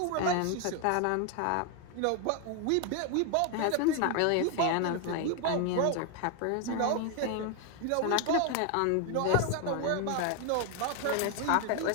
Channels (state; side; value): different; both; correlation 0.01